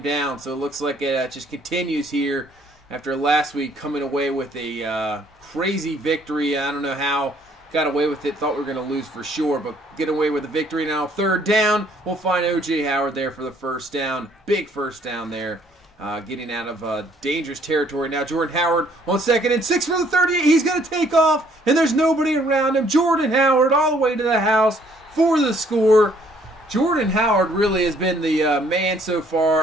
down. So it looks like it just continues here after last week coming away with a crazy victory. I don't know how got away with it. Thought we were going to lose for sure, but get away with the victory. Now 3rd down. We'll find O.J. Howard there for the first down. Big first down there. Getting out of dangerous territory. Now Jordan Howard on 2nd and 6 for the 38. He's going to take off, and there's nobody around him. Jordan Howard all the way to the house for the score. Jordan Howard really has been the man so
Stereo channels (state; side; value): normal; both; correlation 0.63